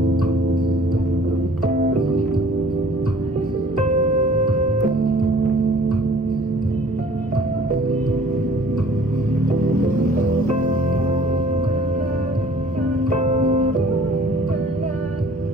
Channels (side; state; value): both; normal; correlation 0.52